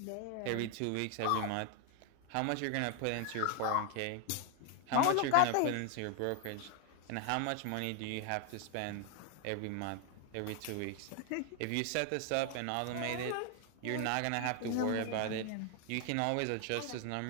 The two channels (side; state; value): both; different; correlation 0.01